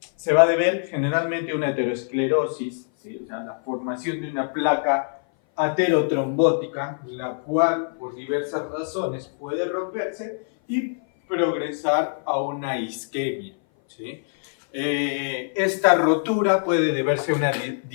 se va a deber generalmente a una aterosclerosis, ¿sí?, o sea, la formación de una placa aterotrombótica, la cual por diversas razones puede romperse y progresar a una isquemia, ¿sí? Esta rotura puede deberse a una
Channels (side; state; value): right; silent; 58 dB below the other